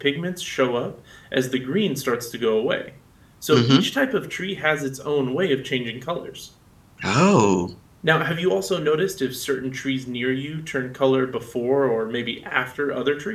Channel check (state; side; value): identical; both; correlation 1.00